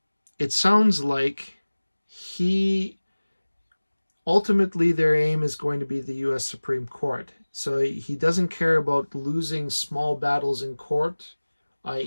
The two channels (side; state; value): both; inverted; correlation -1.00